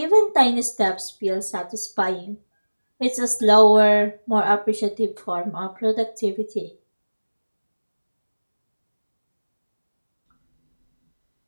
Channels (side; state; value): both; inverted; correlation -1.00